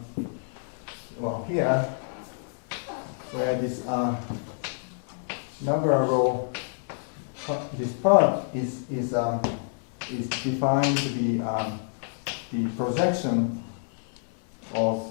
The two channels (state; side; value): silent; right; 59 dB below the other